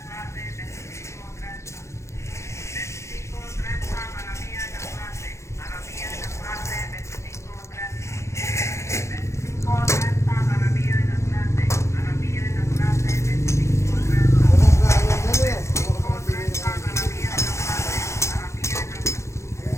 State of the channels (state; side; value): late; right; 0.14 ms